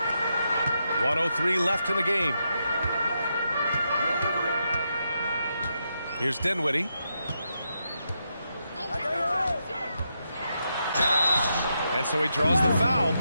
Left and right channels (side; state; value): both; inverted; correlation -0.83